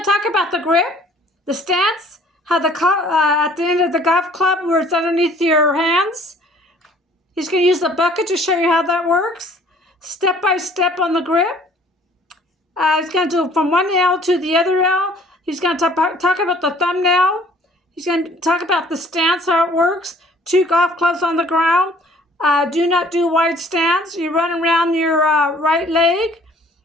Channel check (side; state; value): both; normal; correlation 0.55